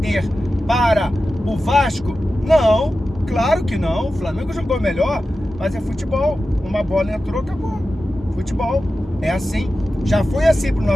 para o Vasco? Não, claro que não. O Flamengo jogou melhor, mas é futebol. Uma bola entrou, acabou. Futebol é assim. Já foi assim pro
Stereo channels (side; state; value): both; normal; correlation 0.93